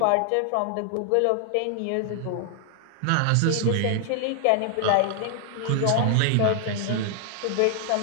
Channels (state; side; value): different; both; correlation 0.00